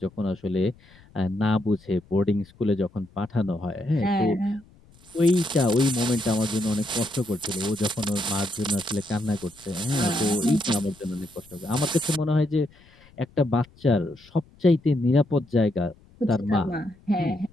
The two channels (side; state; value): left; noise; rumble, 27 dB below the sound